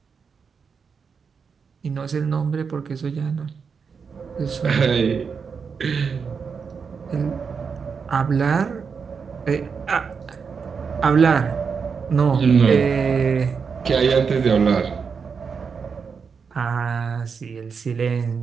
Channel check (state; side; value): quieter; left; 5.8 dB